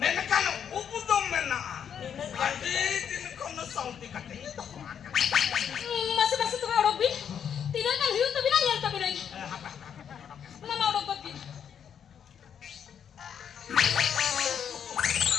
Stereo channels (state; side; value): quieter; right; 8.2 dB